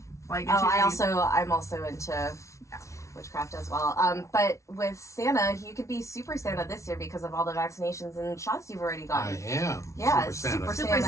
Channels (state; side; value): late; right; 0.14 ms